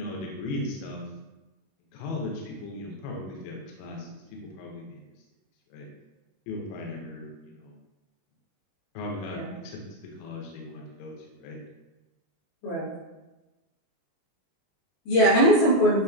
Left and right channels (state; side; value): late; right; 21 ms